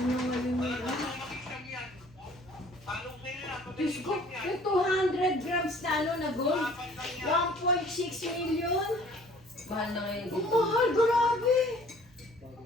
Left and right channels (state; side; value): normal; both; correlation 0.53